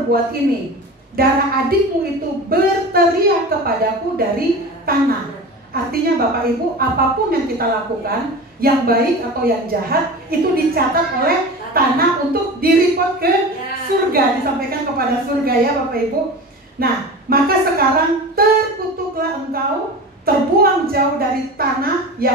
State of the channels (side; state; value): both; normal; correlation 0.32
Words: ini? Darah adikmu itu berteriak kepadaku dari tanah." Artinya Bapak Ibu, apapun yang kita lakukan, yang baik atau yang jahat, itu dicatat oleh tanah untuk direport ke surga, disampaikan kepada surga ya Bapak Ibu. Nah, maka sekarang terkutuklah engkau, terbuang jauh dari tanah